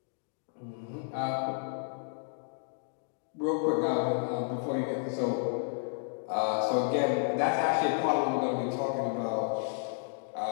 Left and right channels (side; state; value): right; silent; digital silence